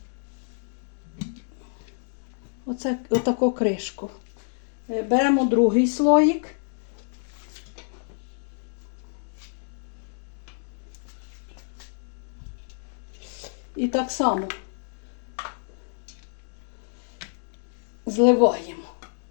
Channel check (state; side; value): silent; right; digital silence